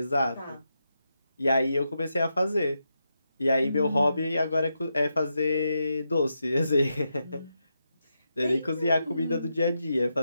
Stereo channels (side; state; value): both; inverted; correlation -0.86